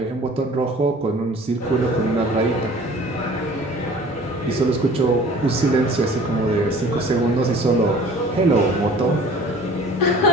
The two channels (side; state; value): both; normal; correlation 0.48